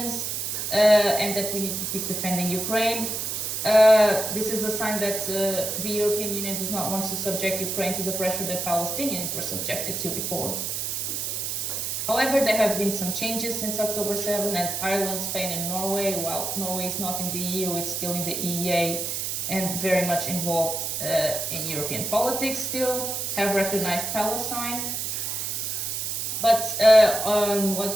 and that we need to keep defending Ukraine. This is a sign that the European Union does not want to subject Ukraine to the pressure that Palestinians were subjected to before. However, there have been some changes since October 7, as Ireland, Spain, and Norway, while Norway is not in the EU, it's still in the EEA and very much involved in European politics still, have recognized Palestine. But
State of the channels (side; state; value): right; noise; hiss, 2 dB below the sound